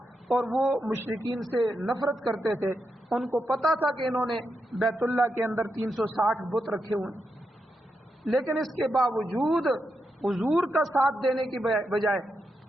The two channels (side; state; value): both; normal; correlation 0.85